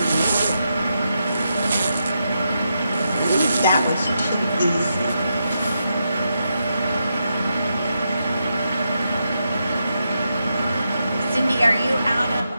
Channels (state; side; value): inverted; both; correlation -0.84